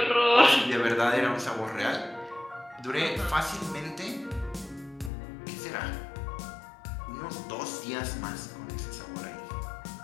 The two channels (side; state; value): right; drops out; at 5.1 s